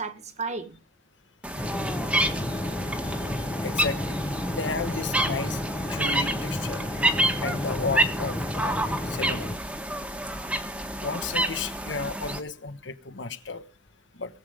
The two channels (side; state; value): both; normal; correlation 0.44